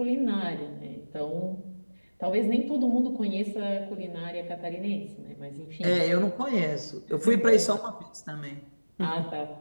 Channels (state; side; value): inverted; both; correlation -1.00